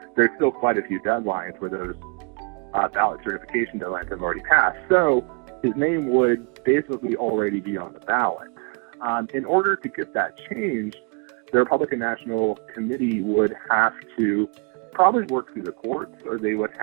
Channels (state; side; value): quieter; left; 33.5 dB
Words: There's still quite a few deadlines where those ballot certification deadlines have already passed. So his name would basically already be on the ballot. In order to get that changed, the Republican National Committee would have to probably work through the courts, or they would